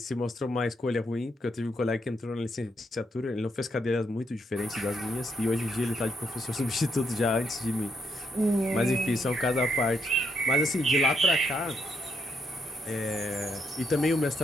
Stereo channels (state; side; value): normal; both; correlation 0.76